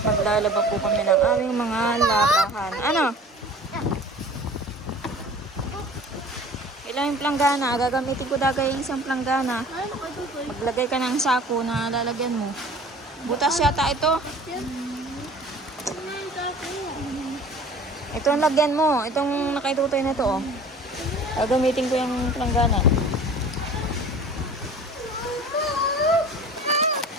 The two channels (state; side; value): normal; both; correlation 0.44